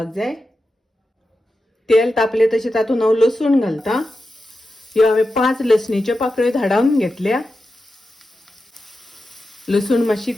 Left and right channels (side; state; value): both; normal; correlation 0.91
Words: जाय। तेल तापले तशें तातून हांव लसूण घालता। ह्यो हांवें 5 लसणीच्यो पाकळ्यो धाडावन घेतल्या। लसूण मातशी